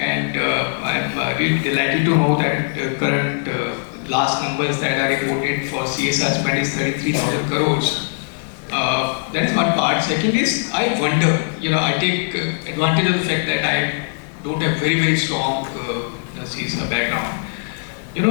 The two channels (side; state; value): right; silent; digital silence